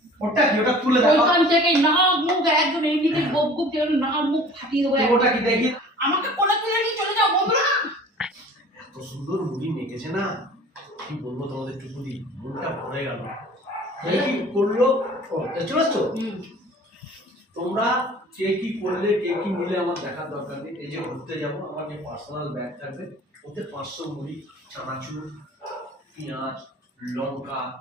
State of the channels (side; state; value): both; normal; correlation 0.45